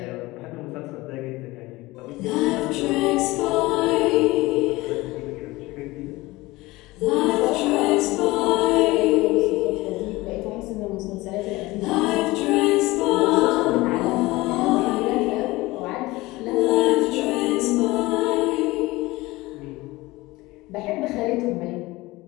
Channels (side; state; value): right; quieter; 20.3 dB